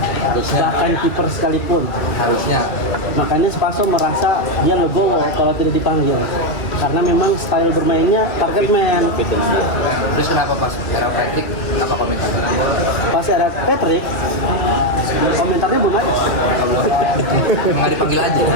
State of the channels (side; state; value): right; late; 2.3 ms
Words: bahkan kiper sekalipun. Harusnya. Makanya Spaso merasa dia legowo kalau tidak dipanggil, karena memang style bermainnya target man. Fit dengan dia. Terus kenapa pas era Patrick apa komentarnya? Pas ada Patrick, komentarnya belum ada. Nggak dipanggil aja.